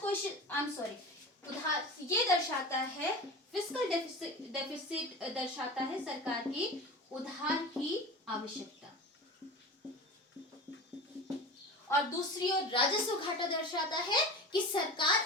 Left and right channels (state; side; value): normal; both; correlation 0.31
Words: उधार ये दर्शाता है, फिस्कल डेफिसिट दर्शाता है सरकार की उधार की आवश्यकता। और दूसरी ओर राजस्व घाटा दर्शाता है कि